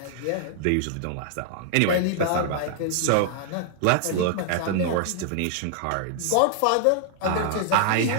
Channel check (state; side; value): different; both; correlation -0.01